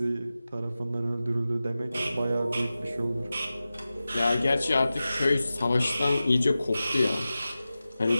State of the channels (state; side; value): inverted; both; correlation -0.95